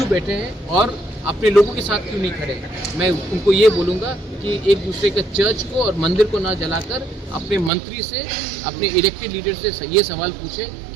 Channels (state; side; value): drops out; left; at 7.7 s